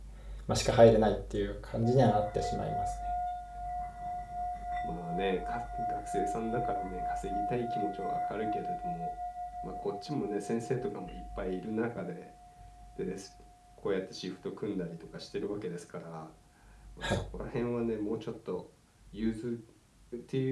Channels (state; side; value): identical; both; correlation 1.00